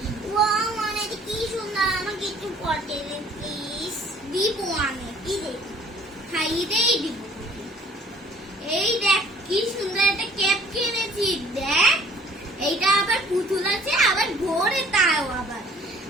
ওয়াও মানে কি সুন্দর, আমাকে একটু পটে দে প্লিজ। দিব আমি। কি দেখি? খাইয়েই দিব। এই দেখ কি সুন্দর একটা ক্যাপ কিনেছি। দেখ এইটা আবার পুতুল আছে, আবার ঘোরে তাও আবার।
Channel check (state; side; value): normal; both; correlation 0.55